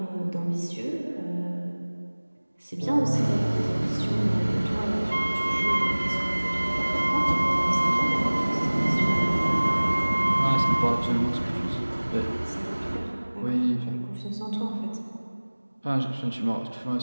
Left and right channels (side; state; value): both; inverted; correlation -1.00